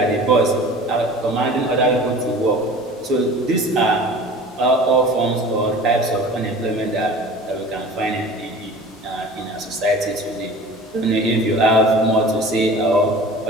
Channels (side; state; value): both; normal; correlation 0.41